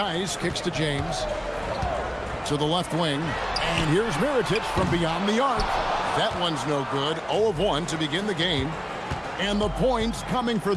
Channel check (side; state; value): both; identical; correlation 1.00